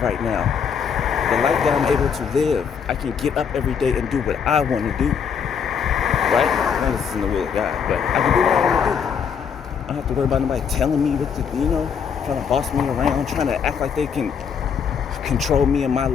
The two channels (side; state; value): right; quieter; 7.0 dB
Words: right now, the life that I'm able to live. I can get up every day and do what I want to do, right? Now, this is in the will of God, but I can do what I want to do. I don't have to worry about nobody telling me what to do, trying to boss me around, trying to act like they can control me in my